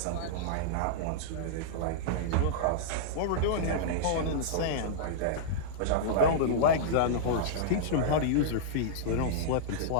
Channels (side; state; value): both; different; correlation -0.02